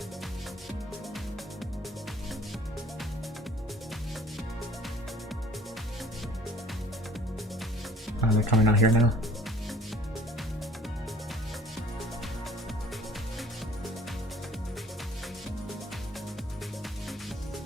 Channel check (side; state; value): both; normal; correlation 0.52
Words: Oh, they're coming out here now.